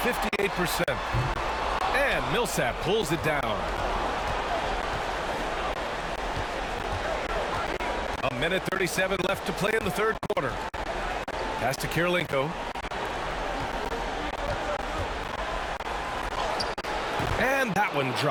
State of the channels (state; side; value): identical; both; correlation 1.00